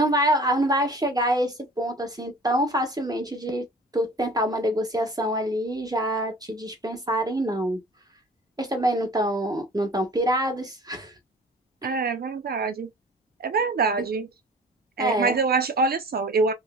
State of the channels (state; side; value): normal; both; correlation 0.45